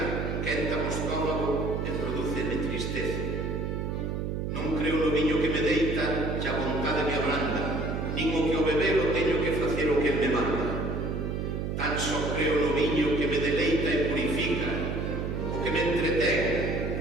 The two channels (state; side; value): noise; right; hum, 2 dB below the sound